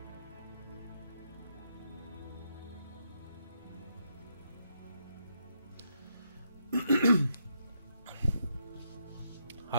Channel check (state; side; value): inverted; both; correlation -0.78